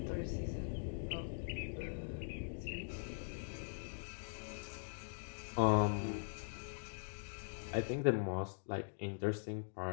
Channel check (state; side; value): silent; right; digital silence